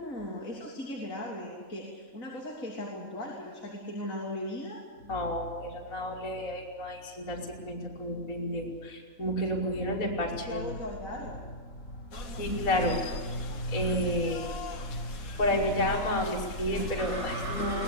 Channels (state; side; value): late; right; 4.1 ms